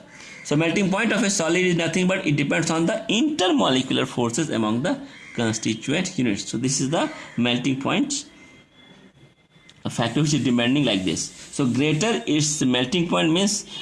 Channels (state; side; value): identical; both; correlation 1.00